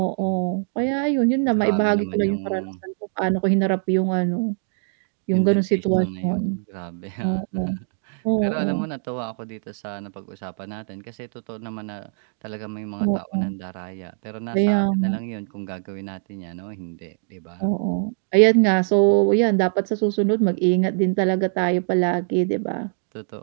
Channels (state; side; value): silent; left; digital silence